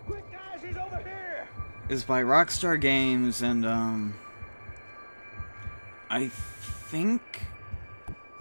Quick, guys, he's over here. It's by Rockstar Games, and I think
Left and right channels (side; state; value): both; inverted; correlation -1.00